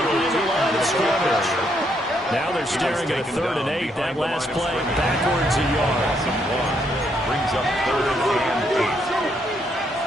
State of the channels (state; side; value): normal; both; correlation 0.74